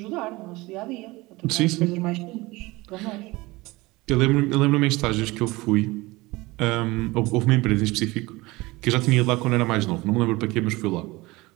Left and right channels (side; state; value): left; quieter; 21.5 dB